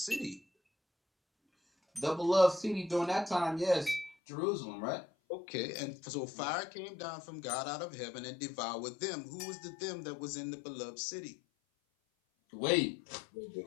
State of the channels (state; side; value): drops out; right; at 4.2 s